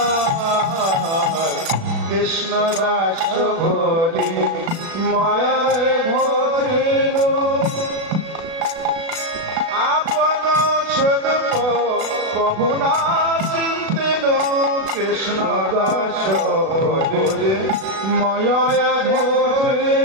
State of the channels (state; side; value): late; left; 36 ms